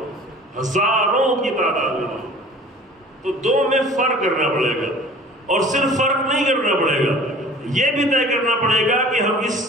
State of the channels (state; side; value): normal; both; correlation 0.46